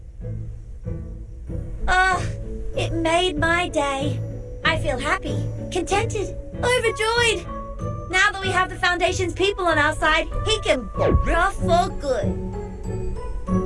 Oh, it made my day. I feel happy, contented, overjoyed. Now that we have the Foundation's people on our side, he can rough for good.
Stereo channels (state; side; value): identical; both; correlation 1.00